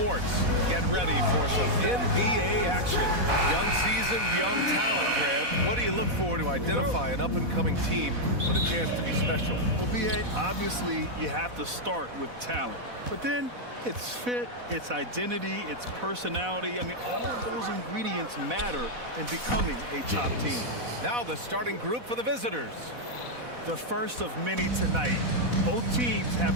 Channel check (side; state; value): left; late; 4.1 ms